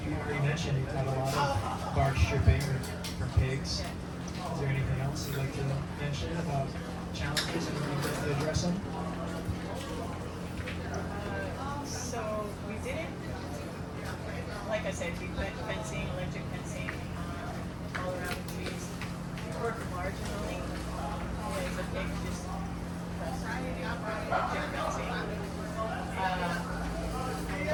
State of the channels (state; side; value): identical; both; correlation 1.00